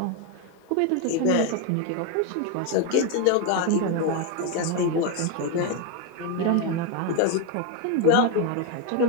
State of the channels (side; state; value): both; different; correlation 0.02